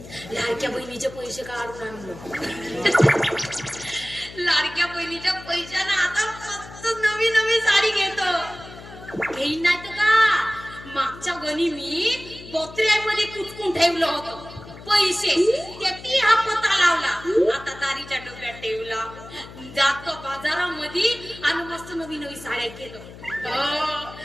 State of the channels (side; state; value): left; noise; hum, 16 dB below the sound